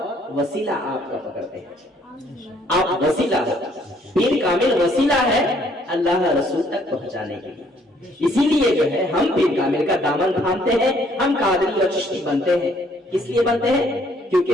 وسیلہ آپ کا پکڑتے ہیں. آپ وسیلہ ہو، پیر کامل وسیلہ ہے اللہ رسول تک پہنچانے کے لیے. اسی لیے جو ہے ہم پیر کامل کا دامن تھامتے ہیں، ہم قادری اور چشتی بنتے ہیں. کس لیے بنتے ہیں؟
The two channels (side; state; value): both; normal; correlation 0.64